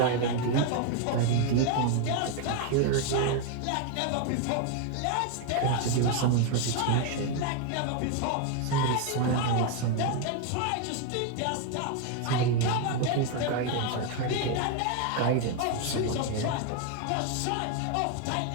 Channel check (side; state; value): both; different; correlation 0.01